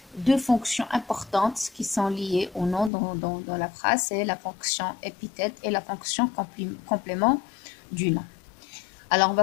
deux fonctions importantes qui sont liées au nom dans la phrase, c'est la fonction épithète et la fonction complément du nom. Alors, on va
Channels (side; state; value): right; drops out; at 2.9 s